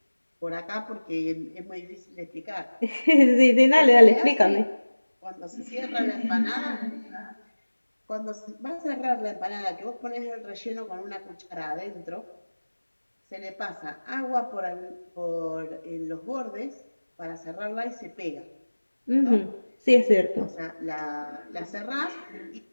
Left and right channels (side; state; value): both; inverted; correlation -1.00